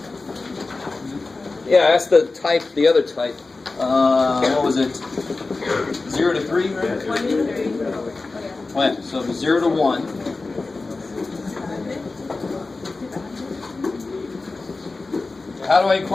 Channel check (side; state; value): right; quieter; 3.6 dB